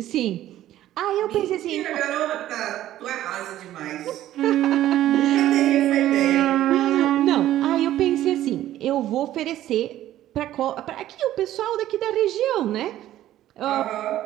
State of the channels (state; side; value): quieter; left; 13.3 dB